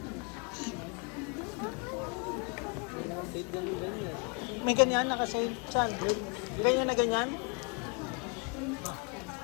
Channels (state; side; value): quieter; right; 33.6 dB